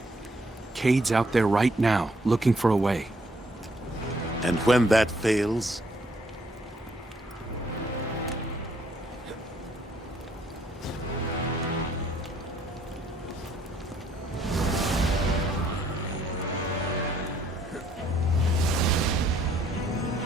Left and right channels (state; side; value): normal; both; correlation 0.67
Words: Cade's out there right now, looking for a way. And when that fails...